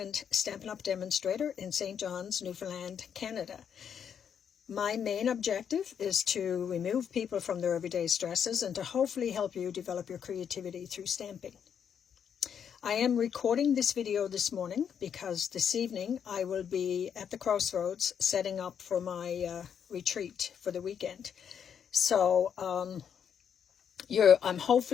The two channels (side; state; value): right; quieter; 7.9 dB